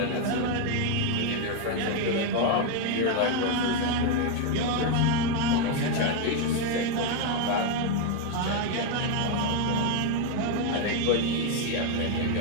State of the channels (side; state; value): both; different; correlation 0.01